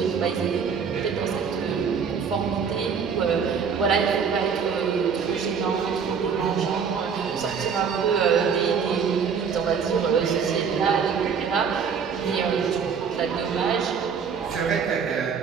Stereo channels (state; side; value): quieter; left; 6.4 dB